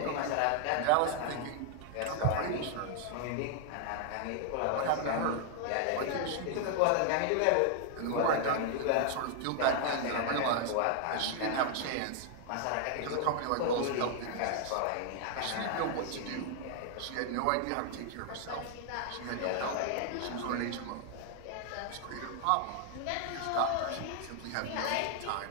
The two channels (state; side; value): different; both; correlation 0.00